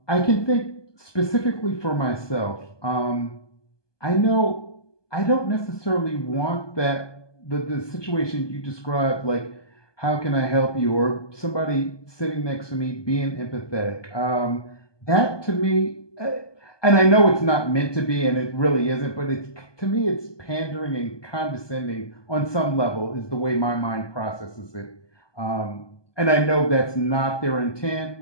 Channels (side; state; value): right; late; 1.2 ms